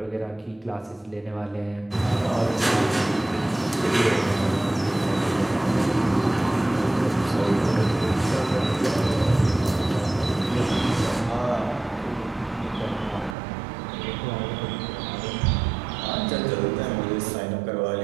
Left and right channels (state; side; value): drops out; left; at 13.4 s